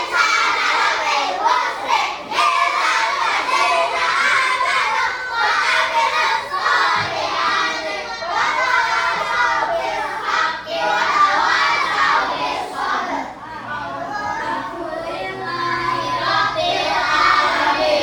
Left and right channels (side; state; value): both; identical; correlation 1.00